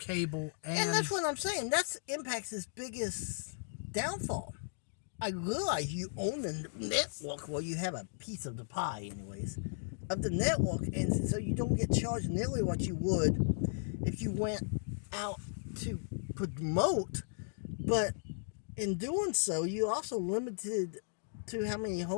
and that's what I'm saying. That's Impact's biggest downfall. I realize you own the network, well, you have a piece of the pie, anyways, of the network, and so you don't get charged nearly what you would if you went out to promote. But in doing so, you also limited to how many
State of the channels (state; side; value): silent; right; digital silence